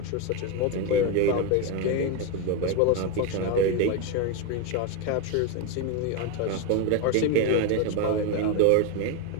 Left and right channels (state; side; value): different; both; correlation 0.03